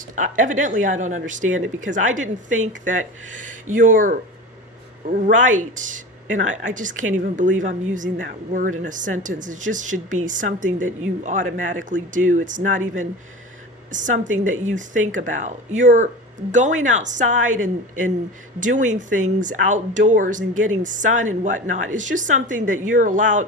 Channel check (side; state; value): both; normal; correlation 0.32